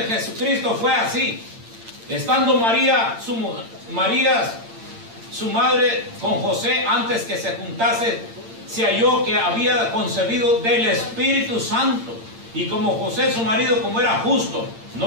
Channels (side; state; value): left; late; 8.8 ms